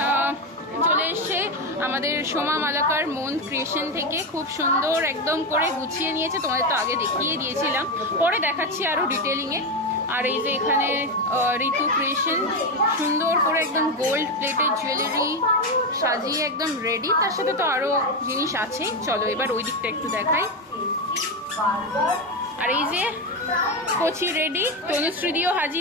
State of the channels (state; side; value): normal; both; correlation 0.12